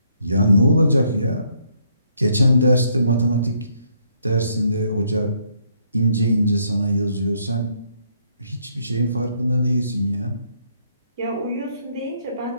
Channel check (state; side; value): inverted; both; correlation -0.71